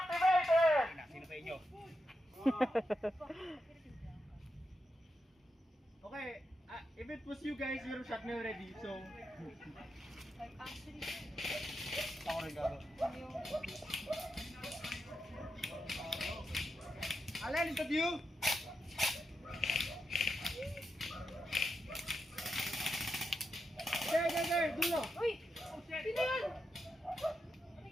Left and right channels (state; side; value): normal; both; correlation 0.86